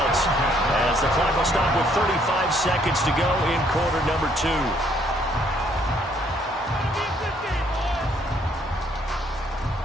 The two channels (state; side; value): normal; both; correlation 0.66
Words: as the clock will stop with 35 seconds to go in quarter number 2.